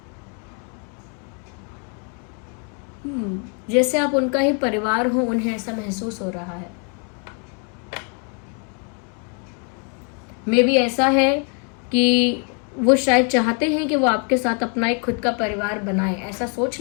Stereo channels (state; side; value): quieter; right; 39.8 dB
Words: जैसे आप उनका ही परिवार हो, उन्हें ऐसा महसूस हो रहा है। मे बी ऐसा है कि वो शायद चाहते हैं कि वो आपके साथ अपना एक खुद का परिवार बनाए, ऐसा सोच